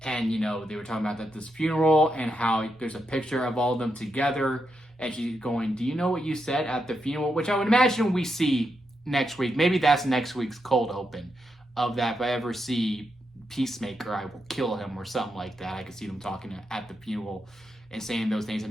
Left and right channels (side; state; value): both; normal; correlation 0.84